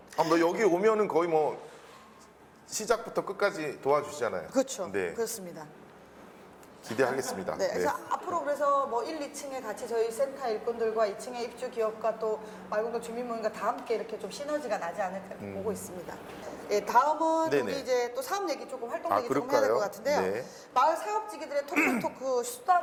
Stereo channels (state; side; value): identical; both; correlation 1.00